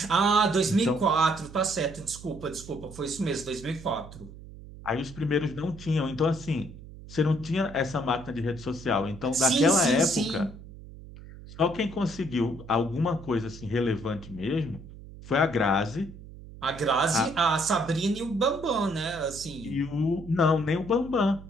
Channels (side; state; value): right; noise; hum, 16 dB below the sound